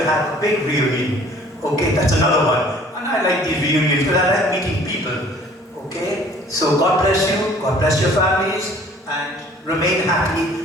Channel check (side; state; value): both; normal; correlation 0.53